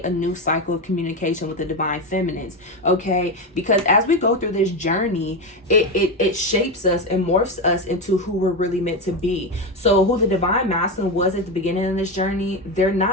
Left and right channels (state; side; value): normal; both; correlation 0.14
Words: a new cycle of communication with the Divine Feminines, okay? Because as we go through this journey, it shapes us and morphs us into who we're really meant to be. So who the Divine Masculine was at the beginning of this journey, they're